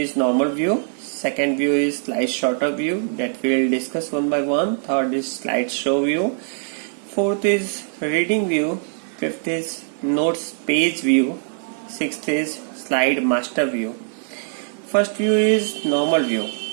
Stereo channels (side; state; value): left; silent; digital silence